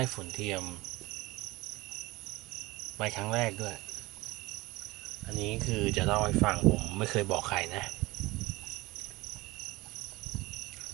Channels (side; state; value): left; quieter; 21.0 dB